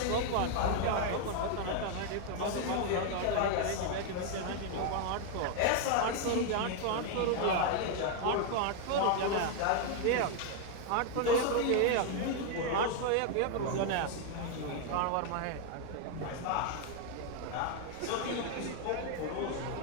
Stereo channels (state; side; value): different; both; correlation 0.00